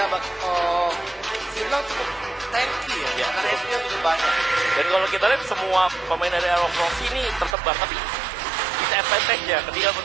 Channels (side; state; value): left; drops out; at 7.6 s